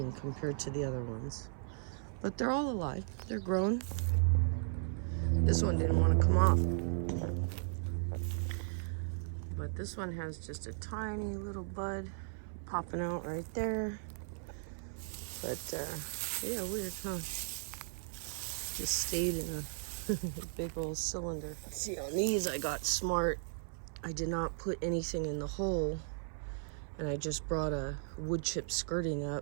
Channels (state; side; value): silent; left; 53 dB below the other